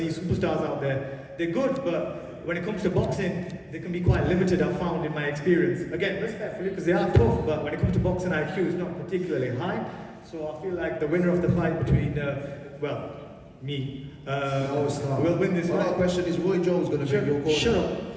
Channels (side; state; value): both; identical; correlation 1.00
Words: superstars out there. They're good, but when it comes to boxing, they can be quite limited, I've found in my experience. Again, respectfully, because they are tough, but when it comes to boxing, IQ is not particularly high. So I feel like the winner of the fight between, me, will win this fight. My question is, Roy Jones going to be your corner? Shut up.